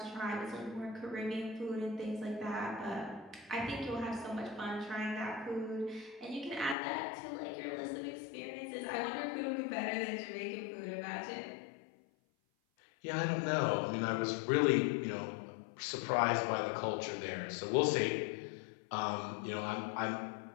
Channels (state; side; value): drops out; right; at 6.8 s